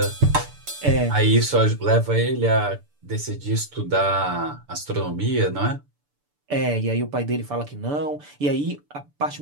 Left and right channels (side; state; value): left; late; 6.9 ms